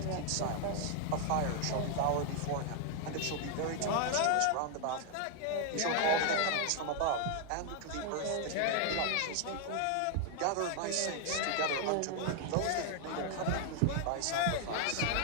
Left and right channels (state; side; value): different; both; correlation 0.00